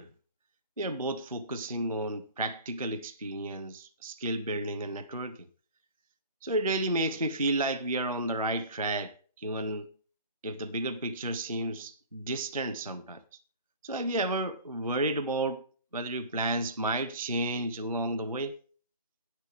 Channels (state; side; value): inverted; both; correlation -0.41